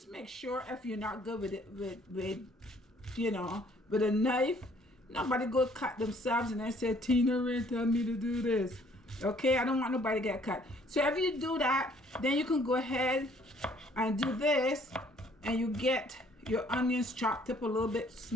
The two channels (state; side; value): normal; both; correlation 0.61